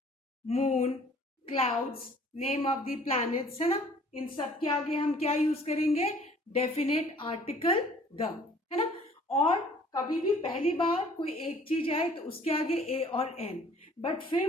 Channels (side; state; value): both; normal; correlation 0.54